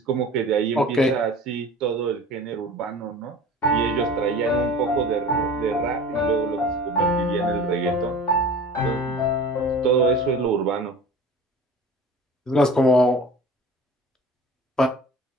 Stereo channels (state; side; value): normal; both; correlation 0.40